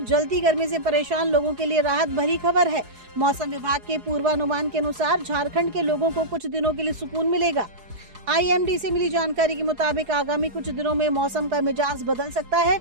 जलती गर्मी से परेशान लोगों के लिए राहत भरी खबर है। मौसम विभाग के पूर्वानुमान के अनुसार झारखंड के लोगों को कुछ दिनों के लिए सुकून मिलेगा। IMD से मिली जानकारी के मुताबिक आगामी कुछ दिनों में मौसम का मिजाज बदल सकता है।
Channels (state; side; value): late; left; 4.7 ms